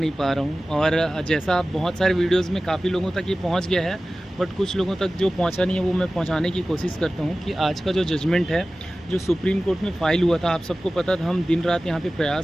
पा रहा हूँ और जैसा आप बहुत सारे वीडियोस में काफ़ी लोगों तक ये पहुँच गया है, बट कुछ लोगों तक जो पहुँचा नहीं है वो मैं पहुँचाने की कोशिश करता हूँ कि आज का जो जजमेंट है, जो सुप्रीम कोर्ट में फ़ाइल हुआ था, आप सबको पता था, हम दिन रात यहाँ पे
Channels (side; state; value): both; normal; correlation 0.96